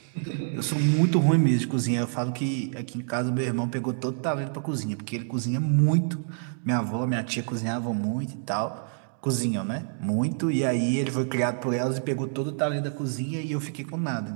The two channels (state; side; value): silent; left; digital silence